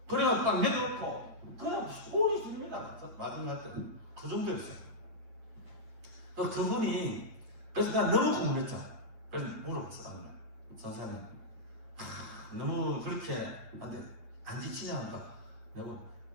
그래가 딱 내려놓고 그냥 소리 줍니다. 마지막 때 그 정도였어요. 그분이 그래서 난 너무 궁금했죠. 그래서 물어봤어. 나는 선생님 너무 그렇게 안 지치냐 하니까 내가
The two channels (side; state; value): left; late; 8.8 ms